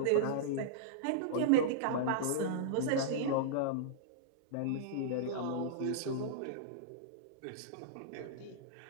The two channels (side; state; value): both; different; correlation -0.02